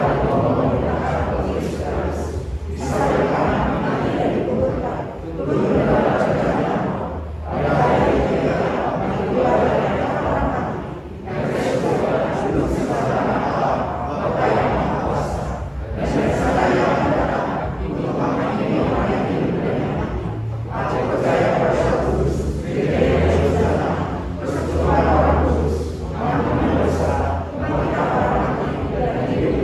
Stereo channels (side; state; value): both; identical; correlation 1.00